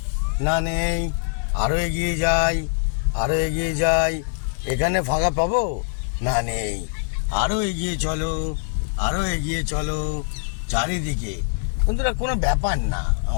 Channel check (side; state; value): right; silent; digital silence